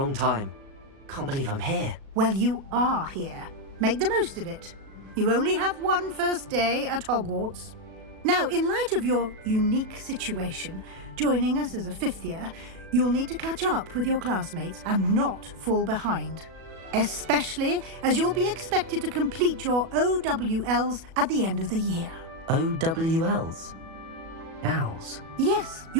time. Can't believe I'm here. Well, you are here. Make the most of it. You only have one first day at Hogwarts. Now, in light of your unique situation, joining us as a fifth year, you'll need to catch up with your classmates and not fall behind. especially as you'll be expected to complete your OWLs at the end of the year. OWLs? Owls? Yes,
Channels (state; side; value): late; left; 37 ms